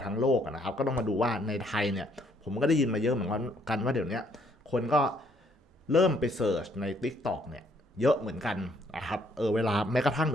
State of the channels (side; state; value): both; normal; correlation 0.67